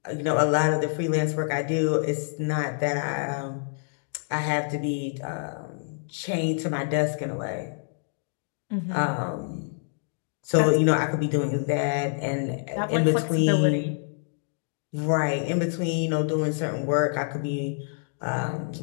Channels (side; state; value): right; silent; digital silence